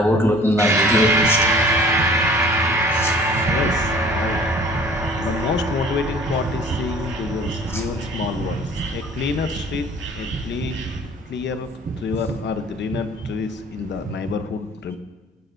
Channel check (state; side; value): normal; both; correlation 0.50